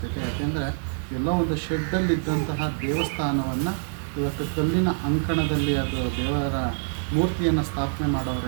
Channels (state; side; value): silent; left; digital silence